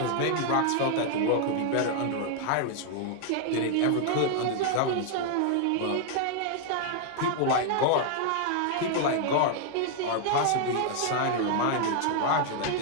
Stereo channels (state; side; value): different; both; correlation 0.00